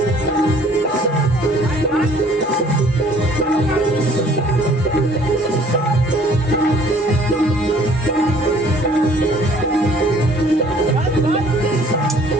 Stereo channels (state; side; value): normal; both; correlation 0.56